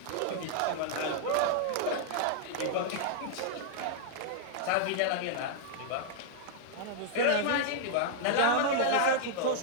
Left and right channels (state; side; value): different; both; correlation -0.01